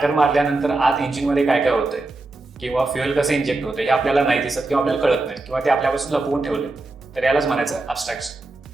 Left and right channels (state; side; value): quieter; left; 3.0 dB